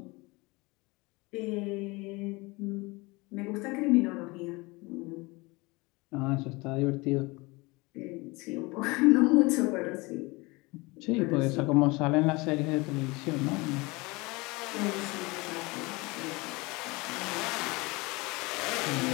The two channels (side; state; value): right; quieter; 24.5 dB